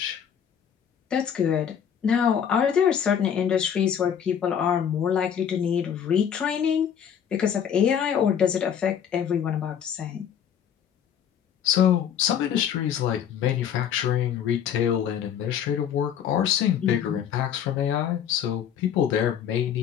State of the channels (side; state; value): right; quieter; 8.6 dB